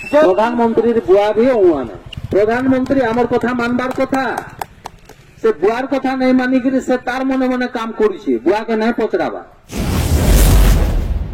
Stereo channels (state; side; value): identical; both; correlation 1.00